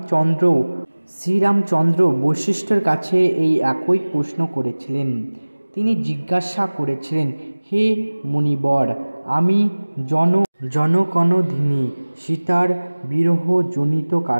শ্রীরামচন্দ্র বশিষ্ঠের কাছে এই একই প্রশ্ন করেছিলেন। তিনি জিজ্ঞাসা করেছিলেন, হে মুনিবর, আমি জনকনদিনী সীতার বিরহজনিত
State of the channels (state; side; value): inverted; both; correlation -1.00